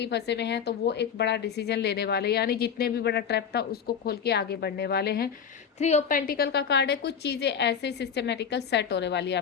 फंसे हुए हैं, तो वो एक बड़ा डिसीजन लेने वाले, यानी जितने भी बड़ा ट्रैप था उसको खोल के आगे बढ़ने वाले हैं। थ्री ऑफ पेंटिकल का कार्ड है, कुछ चीज़ें ऐसे सिस्टमेटिकल सेट होने वाली है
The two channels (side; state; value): right; quieter; 7.3 dB